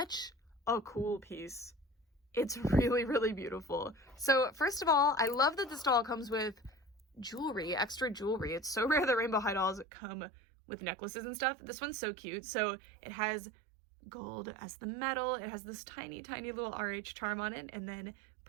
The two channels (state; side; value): drops out; left; at 9.9 s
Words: a cool piece. It's really, really beautiful. So first of all, I love that this doll comes with jewelry, extra jewelry. It's so rare that Rainbow High dolls come with necklaces and stuff. This one's so cute. So it has gold as the metal. It has this tiny, tiny little RH charm on it, and then